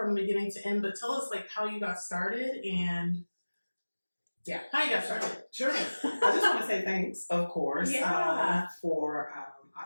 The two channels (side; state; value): both; inverted; correlation -1.00